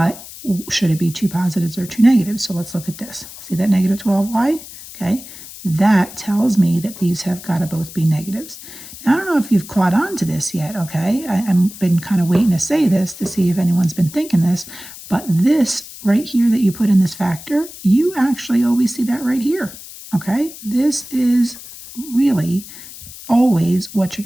should it be 2 positives or 2 negatives? So let's look at this. See that negative 12y? Okay, that tells me that these have got to both be negatives. Now, I don't know if you've caught on to this yet, okay? I've been kind of waiting to say this to see if anyone's been thinking this, but this right here that you put in this factor, you actually always see that right here, okay? This is really always what you're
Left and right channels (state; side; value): noise; left; hiss, 15 dB below the sound